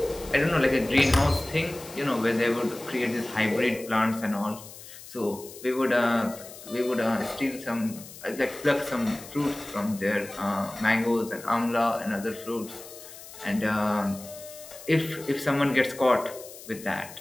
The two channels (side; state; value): left; noise; hiss, 16 dB below the sound